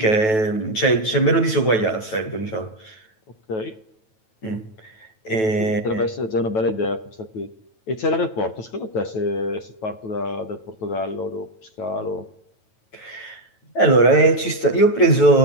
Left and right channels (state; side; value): late; right; 9.2 ms